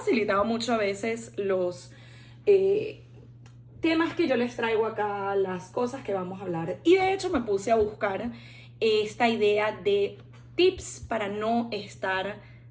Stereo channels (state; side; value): identical; both; correlation 1.00